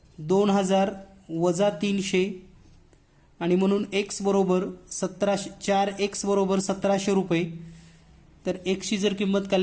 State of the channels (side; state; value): both; identical; correlation 1.00